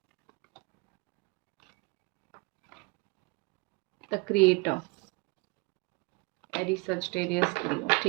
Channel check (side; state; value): left; quieter; 28.0 dB